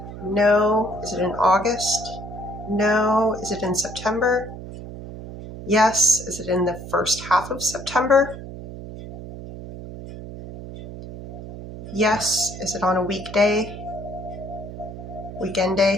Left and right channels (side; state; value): right; noise; hum, 11 dB below the sound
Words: No. Is it in August? No. Is it in September? Yes. Is it in the first half of September? Yes. Is it on a weekday? Weekend